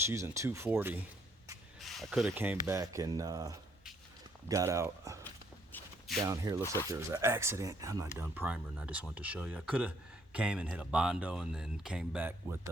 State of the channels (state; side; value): normal; both; correlation 0.68